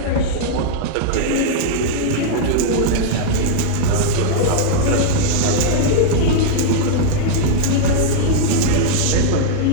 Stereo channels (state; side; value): different; both; correlation -0.01